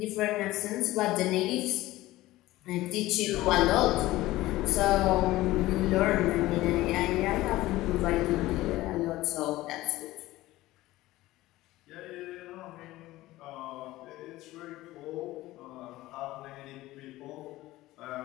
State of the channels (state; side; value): quieter; right; 17.3 dB